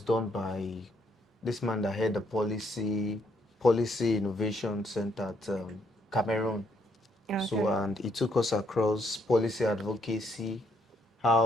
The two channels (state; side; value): normal; both; correlation 0.72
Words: done by this man that had the policy innovation center at Cameroon. So, Okay. and he took us across policy advocacy,